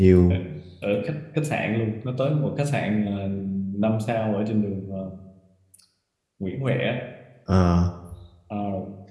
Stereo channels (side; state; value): both; identical; correlation 1.00